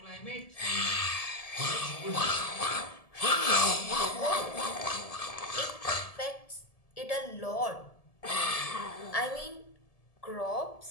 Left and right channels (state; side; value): late; right; 1.7 ms